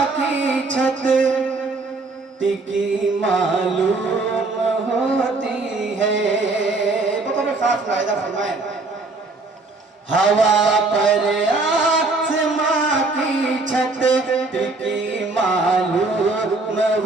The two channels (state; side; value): quieter; left; 3.5 dB